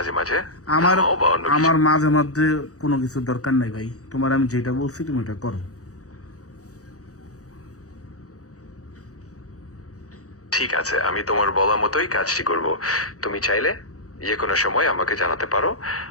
মাঝে আমার থামাও বা অন্য কিছু। আমার মাঝে মধ্যে কোনো কিছুর দরকার নাই ভাই, তোমার আমি যেটা বলছি তুমি এটা করো। ঠিক আছে, আমি তোমার বলা মতোই কাজটি করব। তুমি চাইলে যে কোনো সময় আমাকে জানাতে পারো,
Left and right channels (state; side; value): late; right; 0.66 ms